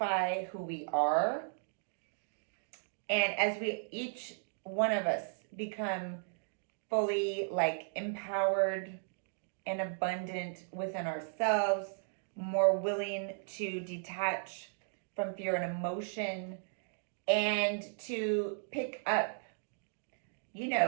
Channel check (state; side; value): silent; left; digital silence